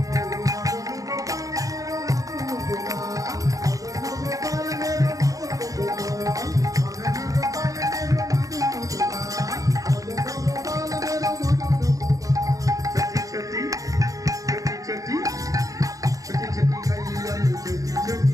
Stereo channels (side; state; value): left; late; 0.17 ms